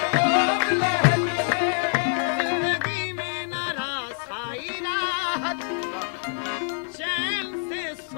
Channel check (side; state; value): right; silent; 61 dB below the other